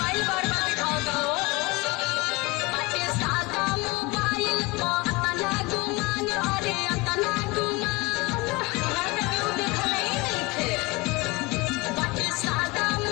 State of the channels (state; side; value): quieter; right; 23.7 dB